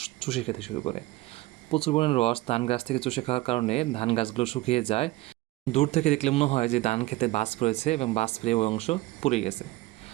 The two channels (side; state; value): left; quieter; 18.7 dB